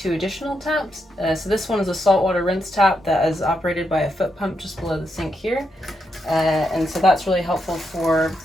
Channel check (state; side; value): normal; both; correlation 0.82